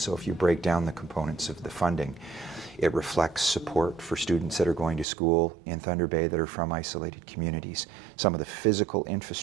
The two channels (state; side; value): drops out; left; at 5.1 s